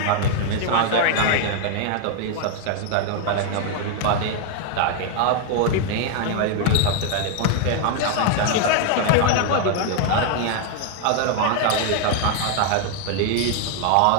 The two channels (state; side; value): different; both; correlation 0.00